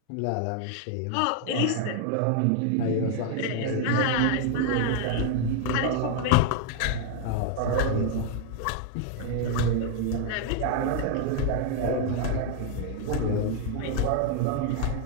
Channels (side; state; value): both; different; correlation 0.00